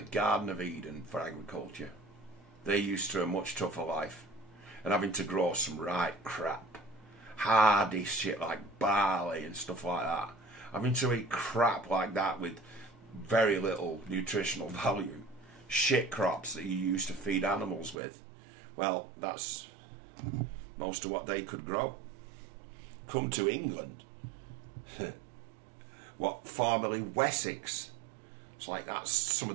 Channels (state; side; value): drops out; left; at 18.0 s